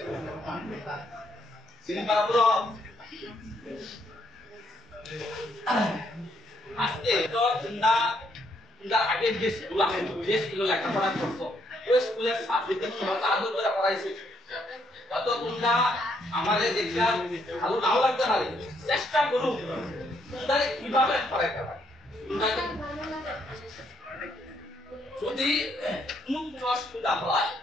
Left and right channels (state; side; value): normal; both; correlation 0.73